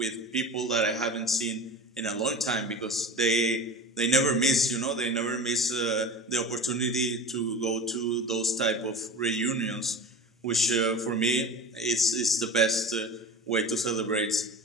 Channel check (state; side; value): normal; both; correlation 0.34